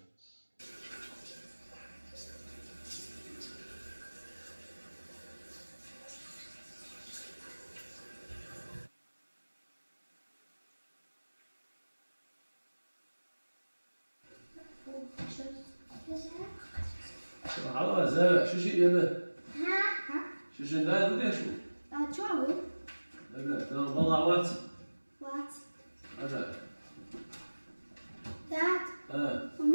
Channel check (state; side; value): inverted; both; correlation -1.00